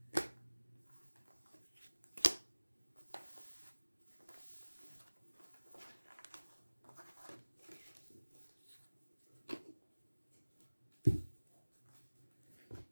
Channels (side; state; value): both; inverted; correlation -1.00